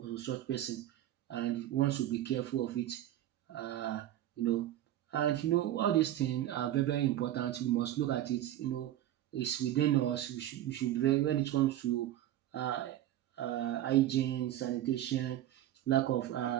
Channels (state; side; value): quieter; left; 12.9 dB